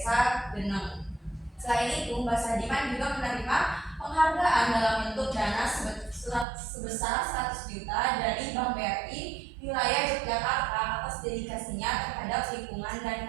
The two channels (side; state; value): left; drops out; at 6.5 s